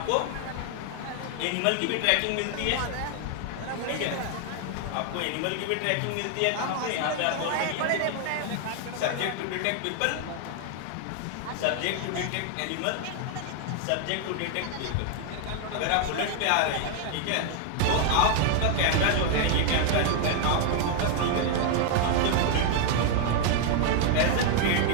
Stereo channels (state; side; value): different; both; correlation 0.00